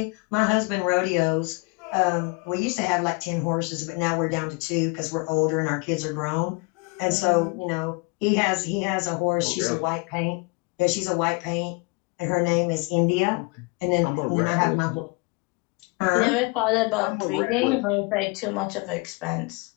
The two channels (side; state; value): right; quieter; 29.3 dB